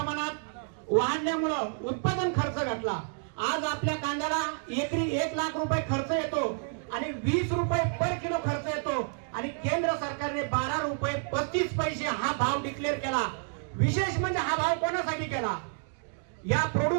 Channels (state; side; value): silent; left; 56 dB below the other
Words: वाढल्यामुळं उत्पादन खर्च घटला. आज आपल्या कांद्याला एकरी 1 लाख रुपये खर्च येतो आणि 20 रुपये पर किलो खर्च येतो. आणि केंद्र सरकारने 12 रुपये 35 पैसे हा भाव डिक्लेअर केला. विशेष म्हणजे हा भाव कोणासाठी केला? या